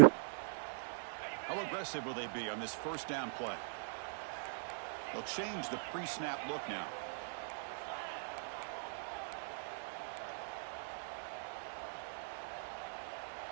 How aggressive will they be on this first down play? They'll change the pre-snap look now.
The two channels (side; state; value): left; silent; digital silence